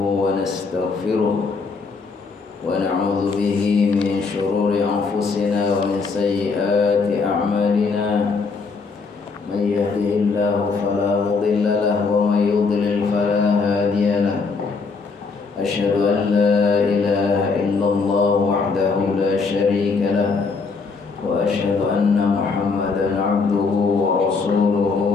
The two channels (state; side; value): quieter; right; 4.6 dB